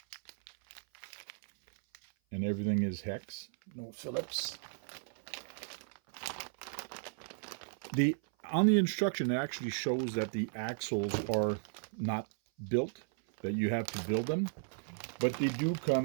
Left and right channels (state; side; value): silent; left; 54 dB below the other